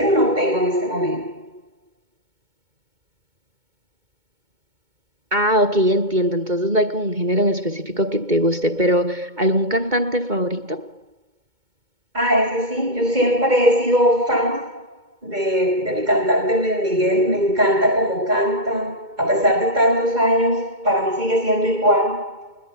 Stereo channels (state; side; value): late; left; 2.2 ms